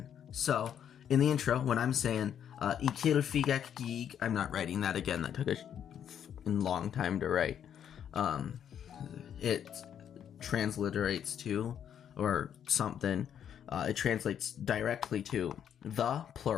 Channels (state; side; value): quieter; right; 9.1 dB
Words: So, in the intro, when I'm saying, ikil figak gig, I'm not writing that again, that took a long time to write. It transliterates to, or something, it translates directly to the,